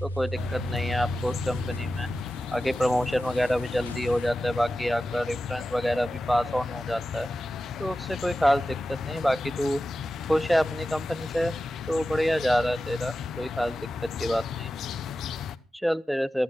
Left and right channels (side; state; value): both; normal; correlation 0.93